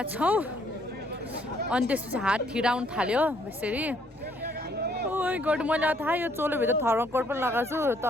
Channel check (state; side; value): normal; both; correlation 0.66